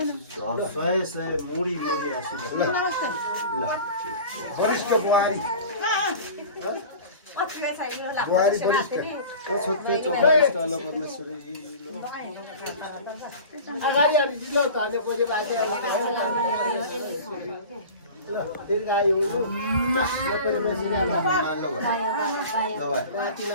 सय सय मुडी मुडी आशीर्वाद ल वरिष्ठ बुहारी बुहारी वरिष्ठ छोटो चौबीस लो परमेश्वरी लो अगाडि अलि दिलो त अहिले पछि राति दीर्घायु परमेश्वरी नाति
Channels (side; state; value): both; inverted; correlation -0.38